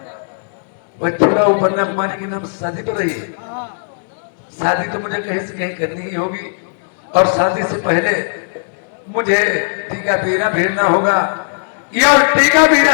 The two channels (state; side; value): silent; right; digital silence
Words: पछूला और बन्ना कुमारी के नाम से शादी पड़ रही है। शादी तो मुझे कहीं से कहीं करनी ही होगी, और शादी से पहले मुझे टीका पीना भिड़ना होगा, या टीका पीने